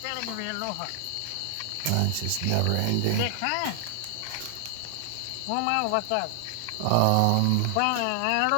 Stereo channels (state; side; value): different; both; correlation 0.00